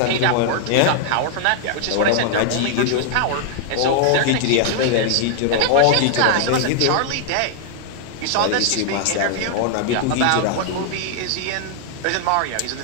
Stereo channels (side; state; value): both; different; correlation 0.00